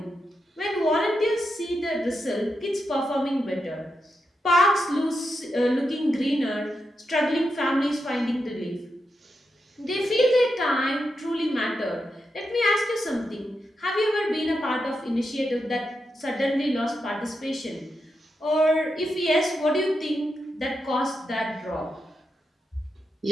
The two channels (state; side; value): normal; both; correlation 0.86